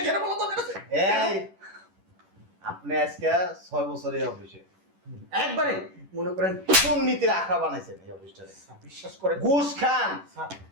যেটা বলো তোর কাছে। এই আপনি আজকে 6 বছর এই অফিসে একবারে মনে করেন দুর্নীতির আখড়া বানাইছেন এই অফিসটারে। স্যার, বিশ্বাস করেন ঘুষ খান। স্যার,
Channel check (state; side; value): late; left; 10 ms